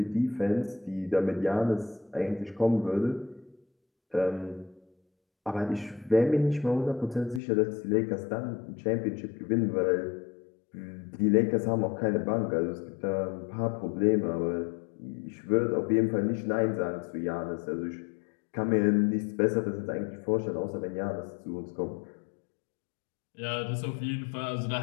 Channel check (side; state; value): right; drops out; at 7.4 s